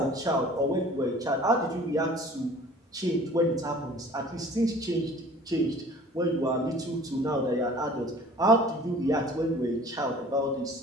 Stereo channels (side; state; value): both; normal; correlation 0.48